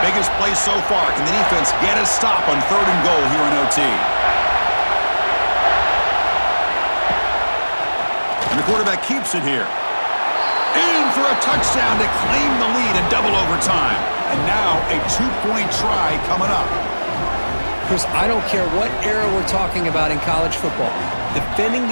Biggest play so far. Can the defense get a stop on third and goal here in OT? And the quarterback keeps it here. In for a touchdown to claim the lead in double overtime. And now a 2-point try coming up. Chris, I don't care what era we're talking about in college football. Defending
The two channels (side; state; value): both; inverted; correlation -1.00